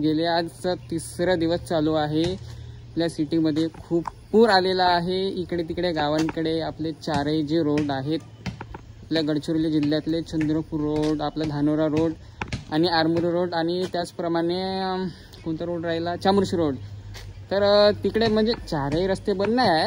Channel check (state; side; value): identical; both; correlation 1.00